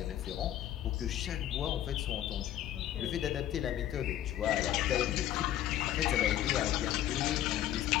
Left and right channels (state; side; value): quieter; right; 12.2 dB